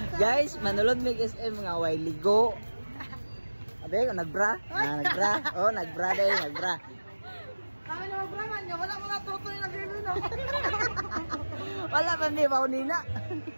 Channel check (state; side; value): inverted; both; correlation -1.00